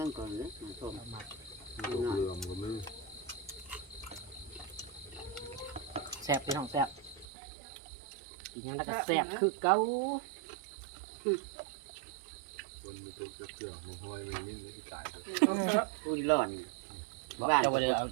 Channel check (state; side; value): drops out; left; at 7.2 s